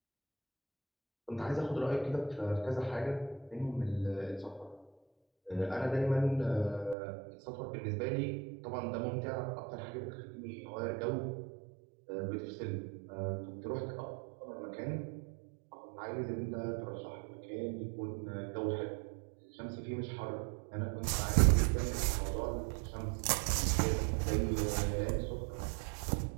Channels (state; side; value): drops out; left; at 7.0 s